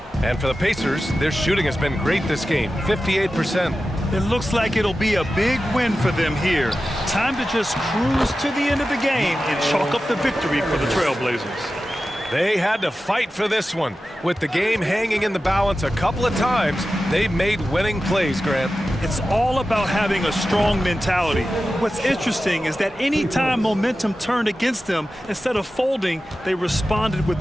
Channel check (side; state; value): both; normal; correlation 0.93